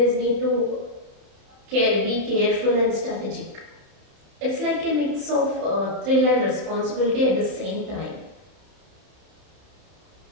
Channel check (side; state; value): left; late; 31 ms